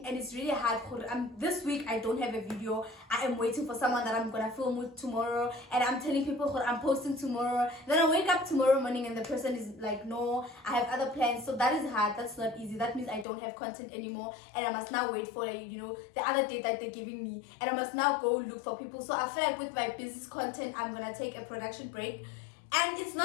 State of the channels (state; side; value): drops out; right; at 13.2 s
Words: and it's really hard. This week I don't have a video. I am waiting for someone that I'm gonna film with tomorrow, and I'm telling people I'm posting tomorrow. Then I wake up tomorrow morning and the person is like, no, I have other plans. So that is hard. That's not easy. That means I don't have content anymore, and I must now wait for, you know, the other date that they're giving me, and I must now go look for people. So I feel like with my business content, I'm gonna take a production break. And it's